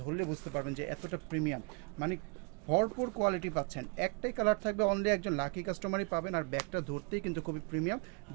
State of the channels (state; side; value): quieter; left; 34.1 dB